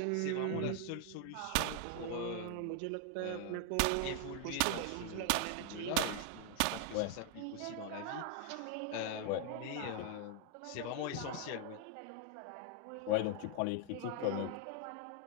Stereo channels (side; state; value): both; different; correlation 0.00